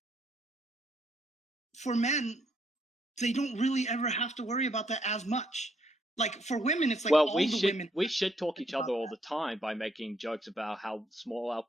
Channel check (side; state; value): both; normal; correlation 0.71